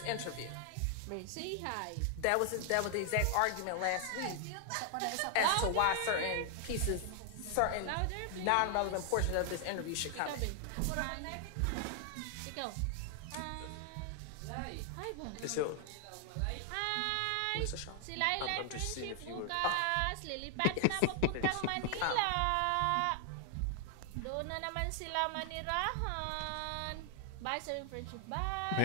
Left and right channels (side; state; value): both; different; correlation 0.00